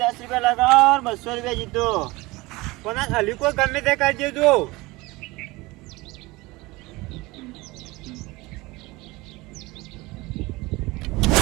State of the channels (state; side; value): quieter; left; 22.0 dB